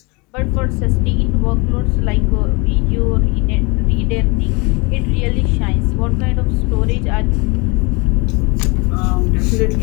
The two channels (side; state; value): right; quieter; 27.9 dB